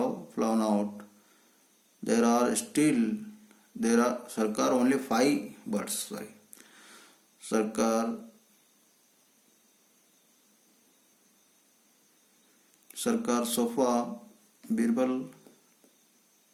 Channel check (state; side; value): identical; both; correlation 1.00